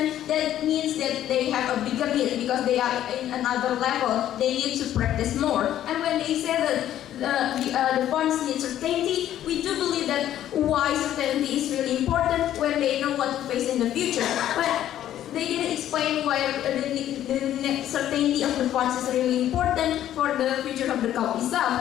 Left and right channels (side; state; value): right; quieter; 11.8 dB